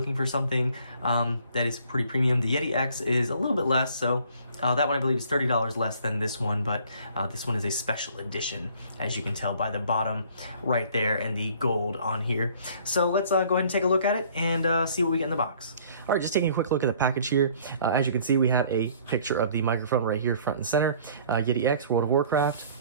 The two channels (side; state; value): both; inverted; correlation -0.56